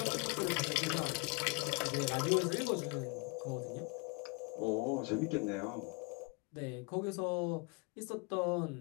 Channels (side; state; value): right; quieter; 31.1 dB